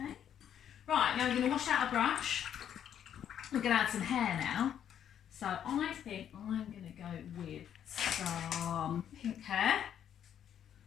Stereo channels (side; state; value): right; quieter; 9.5 dB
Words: Right, now we're going to wash out a brush. We're going to add some hair now. So I think I'm going to go with some pink hair.